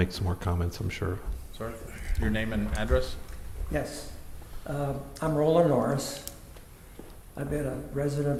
some more comments, I'm sure. Sir, your name and address? Yes. I'm Roland Norris. I've been a resident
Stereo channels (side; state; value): both; identical; correlation 1.00